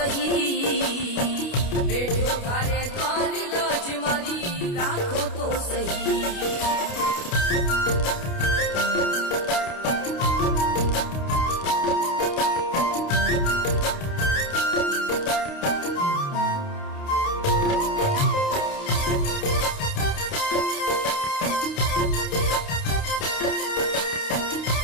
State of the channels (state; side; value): late; right; 29 ms